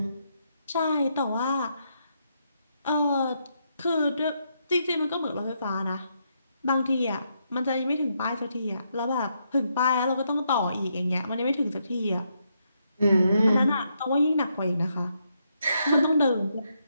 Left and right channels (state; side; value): inverted; both; correlation -0.78